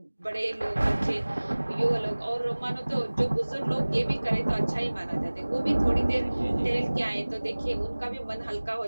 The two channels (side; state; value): both; inverted; correlation -1.00